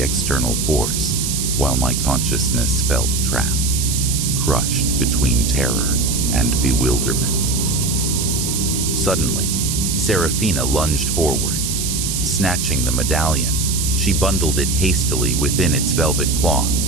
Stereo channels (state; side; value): noise; right; hiss, 2 dB below the sound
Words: external force, while my consciousness felt trapped, crushed between terror and bewilderment. Suddenly, Serafina lunged forward. Snatching the medallion, she bundled it hastily within its velvet cloth,